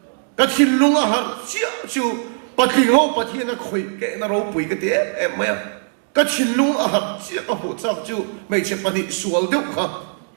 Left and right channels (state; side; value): silent; left; digital silence